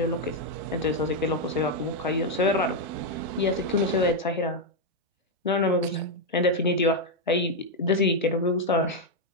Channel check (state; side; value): normal; both; correlation 0.01